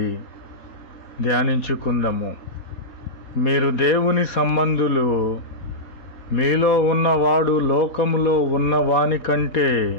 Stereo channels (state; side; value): late; right; 4.2 ms